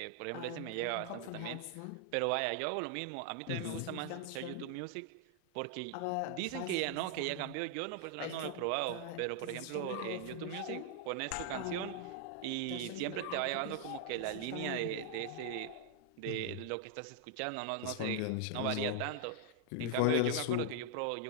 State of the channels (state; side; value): different; both; correlation 0.00